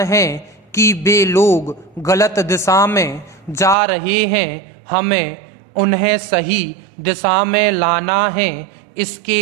है कि वे लोग गलत दिशा में जा रहे हैं। हमें उन्हें सही दिशा में लाना है।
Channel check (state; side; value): drops out; left; at 3.8 s